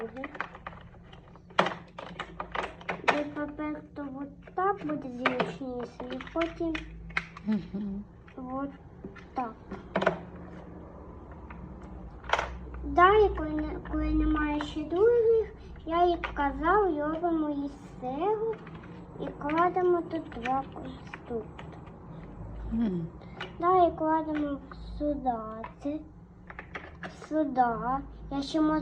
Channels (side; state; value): both; identical; correlation 1.00